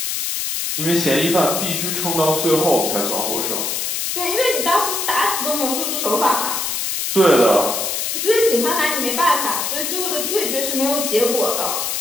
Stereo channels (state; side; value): noise; left; hiss, 1 dB below the sound